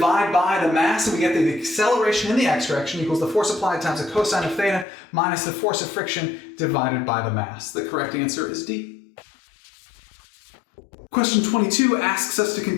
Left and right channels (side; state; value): right; drops out; at 4.9 s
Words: by the mass and we get the acceleration in the x direction equals the force applied times the cosine of theta minus the force of friction divided by the mass. The correct answer is D. Question 22 asks us to